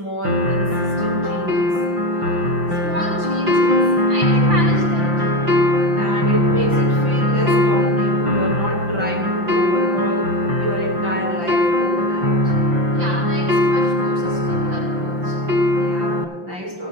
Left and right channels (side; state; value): left; late; 5.8 ms